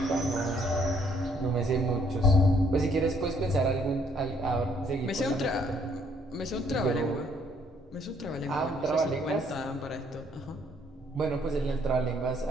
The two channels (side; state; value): both; normal; correlation 0.66